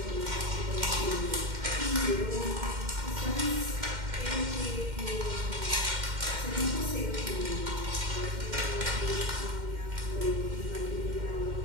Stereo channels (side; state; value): left; late; 2.1 ms